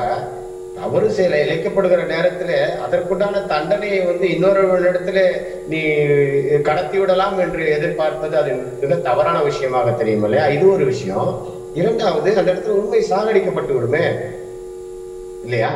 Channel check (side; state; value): both; identical; correlation 1.00